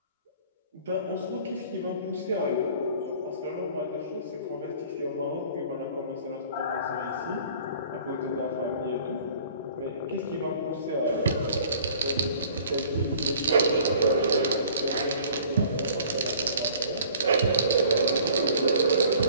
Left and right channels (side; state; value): both; inverted; correlation -0.52